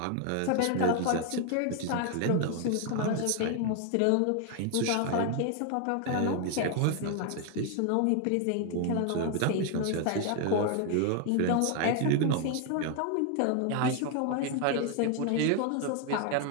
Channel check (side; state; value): both; different; correlation 0.01